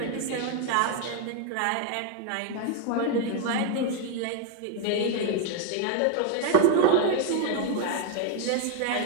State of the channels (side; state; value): both; different; correlation 0.00